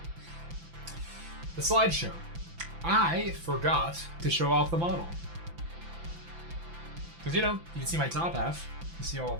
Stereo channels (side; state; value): left; late; 5.9 ms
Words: the slideshow. I forgot to show off the model. Because, you know, you can see my top half. You see all